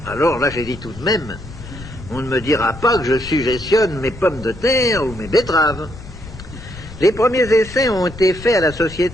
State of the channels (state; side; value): noise; left; rumble, 15 dB below the sound